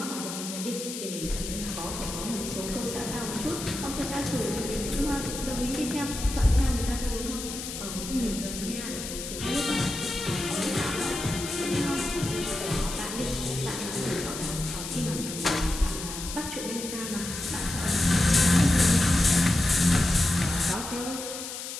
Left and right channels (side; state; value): left; noise; hiss, 8 dB below the sound